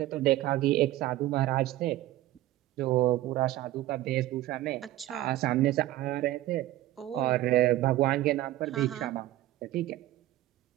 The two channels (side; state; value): left; quieter; 15.4 dB